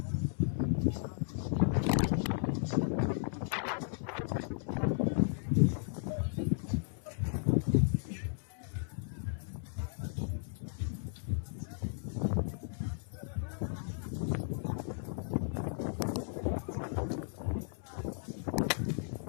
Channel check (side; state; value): right; silent; digital silence